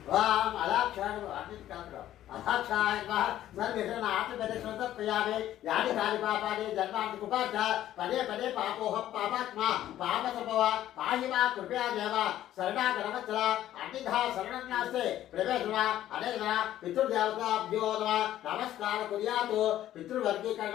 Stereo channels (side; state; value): right; quieter; 12.7 dB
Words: అలాక్షాడు అన్నింటి కాదు. అహాక్షాయ ఆత్మప్రదక్షిణ తర్పయామి. యాని కాని పాపాని జన్మాంతి కుపాచ పదే పదే పాపోహం పాపాత్మ పాప సంభవ పాహి మా కృపయా దేవ శరణాగరవత్సల అన్నిధా శరణం నాస్తే ప్రవేశన అనేక పితృదేవతాభ్యో నమః. నమస్కార కుర్యాతు.